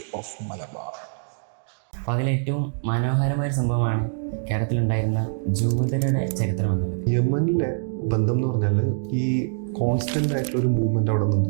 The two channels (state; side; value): silent; left; 62 dB below the other